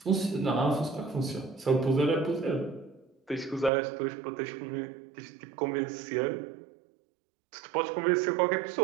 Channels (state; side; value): drops out; left; at 3.7 s